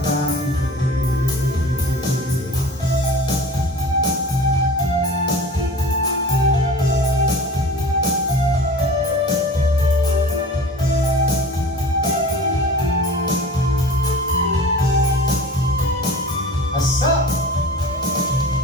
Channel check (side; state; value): both; normal; correlation 0.39